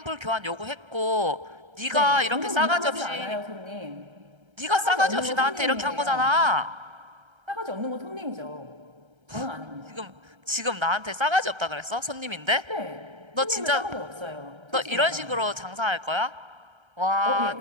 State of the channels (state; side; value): late; left; 1.3 ms